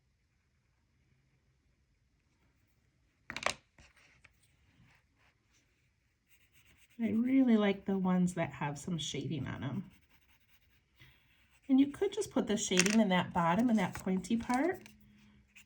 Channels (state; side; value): identical; both; correlation 1.00